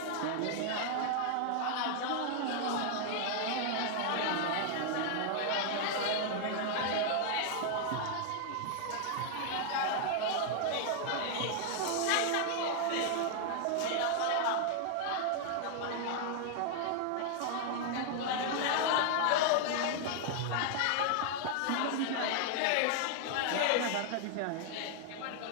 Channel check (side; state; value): both; different; correlation 0.00